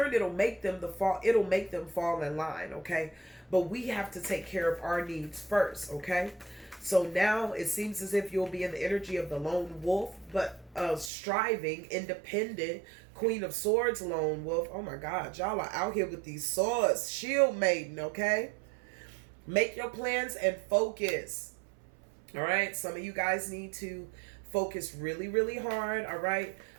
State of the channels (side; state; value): left; drops out; at 11.1 s